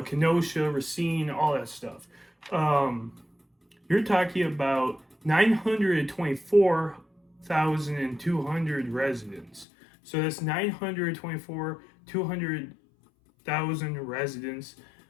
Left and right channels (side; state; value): right; drops out; at 9.7 s